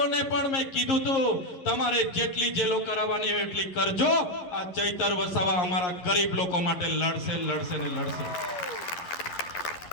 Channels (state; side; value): late; right; 11 ms